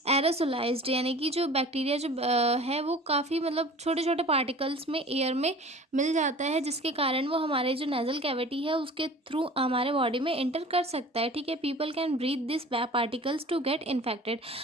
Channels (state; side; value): normal; both; correlation 0.43